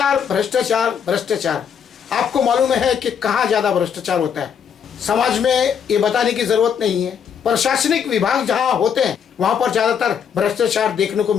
भ्रष्टाचार भ्रष्टाचार, आपको मालूम है कि कहाँ ज्यादा भ्रष्टाचार होता है। समाज में ये बताने की जरूरत नहीं है। प्रशासनिक विभाग जहाँ होते हैं वहां पर ज्यादातर भ्रष्टाचार देखने को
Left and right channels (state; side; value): quieter; right; 7.6 dB